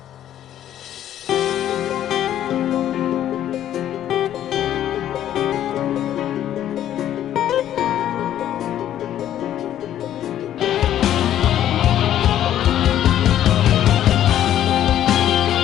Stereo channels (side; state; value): right; quieter; 11.4 dB